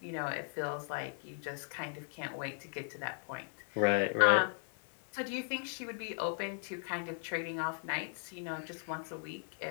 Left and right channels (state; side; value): silent; right; 53 dB below the other